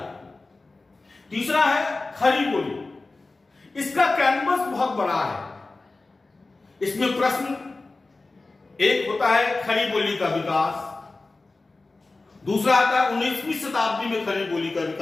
तीसरा है खड़ी बोली। इसका कैनवस बहुत बड़ा है। इसमें प्रश्न एक होता है खड़ी बोली का विकास, दूसरा आता है 19वीं शताब्दी में खड़ी बोली का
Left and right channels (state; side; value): quieter; right; 3.4 dB